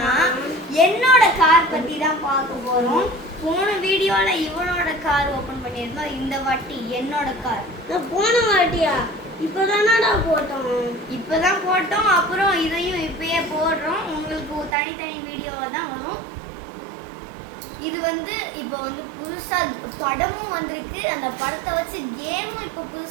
என்னோட கார் பத்தி தான் பார்க்க போறோம். போன வீடியோல இவனோட கார் ஓபன் பண்ணியிருந்தோம். இந்த வாட்டி என்னோட கார். போன வாட்டியா? இப்பதானடா போட்டோம். அப்புறம் இதையும் இப்பயே போடுறோம். உங்களுக்கு தனித்தனி வீடியோவா தான் வரும். இது இப்போ புதுசா படமும் வந்திருக்கு. அந்த படத்தை வச்சு கேமும் இப்போ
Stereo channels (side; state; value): left; drops out; at 14.8 s